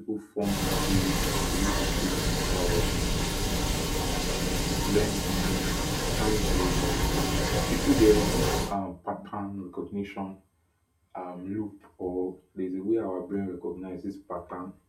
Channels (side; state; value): both; identical; correlation 1.00